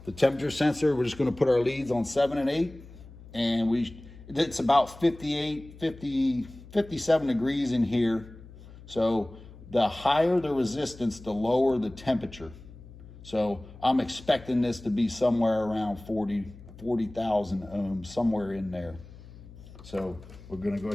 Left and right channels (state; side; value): noise; left; hum, 18 dB below the sound